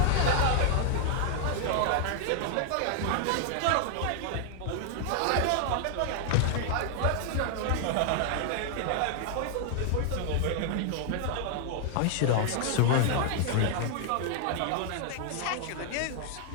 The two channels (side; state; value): both; different; correlation 0.00